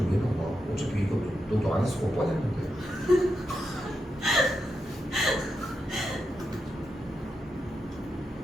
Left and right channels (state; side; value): normal; both; correlation 0.86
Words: 왜 넣어? 어차피 이것도 너도 안 했을 거 뻔했는데.